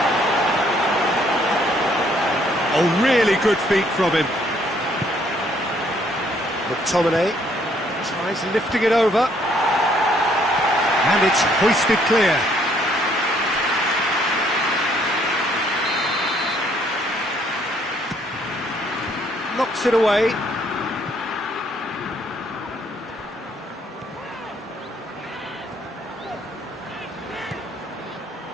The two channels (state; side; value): normal; both; correlation 0.66